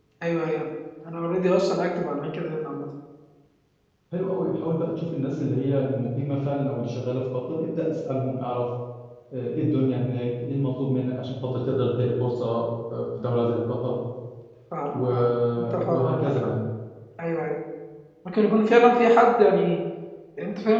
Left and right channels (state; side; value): identical; both; correlation 1.00